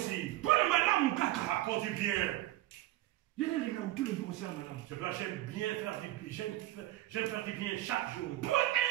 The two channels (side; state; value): left; quieter; 15.7 dB